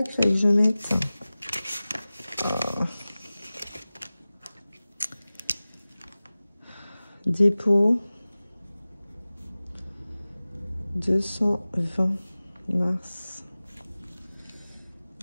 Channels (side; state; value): both; inverted; correlation -0.97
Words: qu'il fallait que je mette. Dépôt. 220 mars.